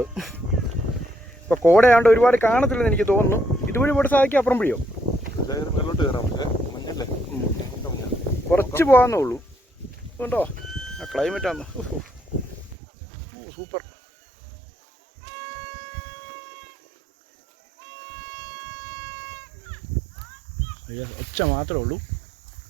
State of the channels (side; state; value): left; drops out; at 12.8 s